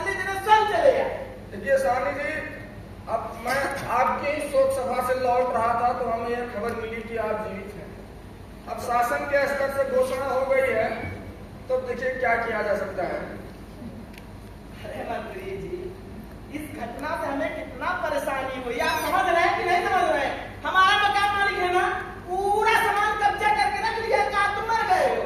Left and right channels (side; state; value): both; identical; correlation 1.00